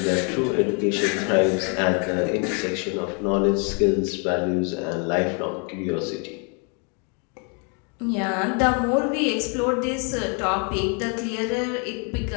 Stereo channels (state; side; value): quieter; right; 37.1 dB